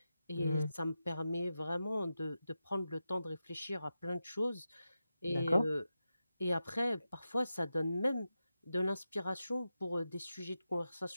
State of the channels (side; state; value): both; inverted; correlation -0.91